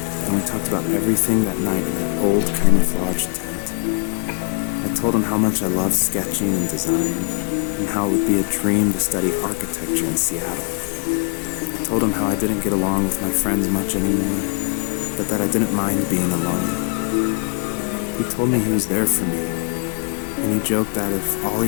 and we talked about everything that night in that old camouflage tent. I told him how much I loved sketching and design, and how it would be a dream to study architecture in Seattle. I told him how I didn't get along with my friends much anymore, but that I didn't mind being alone. He told me he was there for me, and he joked that if all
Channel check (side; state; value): right; quieter; 38.2 dB